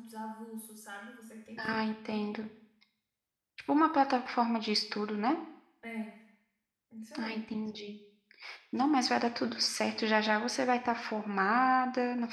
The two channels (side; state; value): both; identical; correlation 1.00